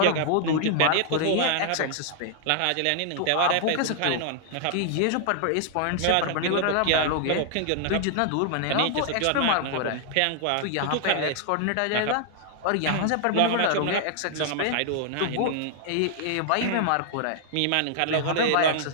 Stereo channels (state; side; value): different; both; correlation 0.00